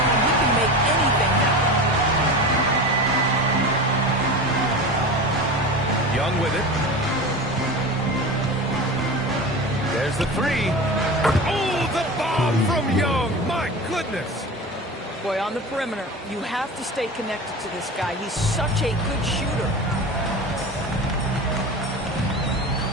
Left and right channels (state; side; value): normal; both; correlation 0.30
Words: he can make anything happen. Young with it. There's the three. Oh, the bomb from Young. My goodness. Boy, on the perimeter, you have to stay connected to this guy. He's such a good shooter.